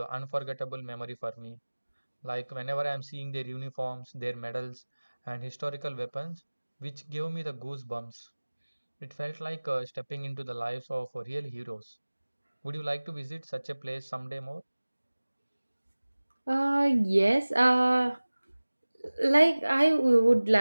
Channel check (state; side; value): inverted; both; correlation -1.00